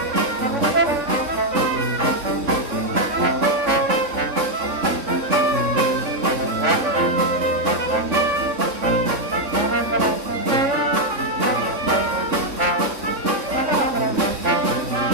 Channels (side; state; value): left; late; 3.6 ms